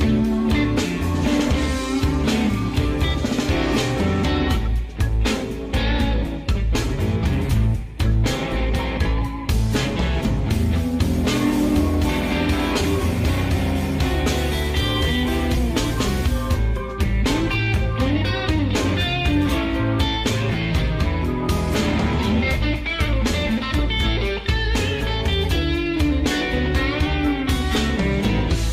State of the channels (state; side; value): identical; both; correlation 1.00